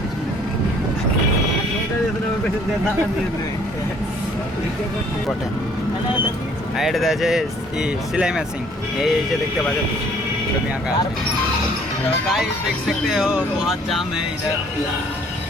পিছনে। আর এটা আছে सिलाई मशीन, এই যে দেখতে পাচ্ছ ছবি আঁকা আছে। तो गाइस देख सकते हो बहुत जाम है इधर।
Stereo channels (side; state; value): both; normal; correlation 0.59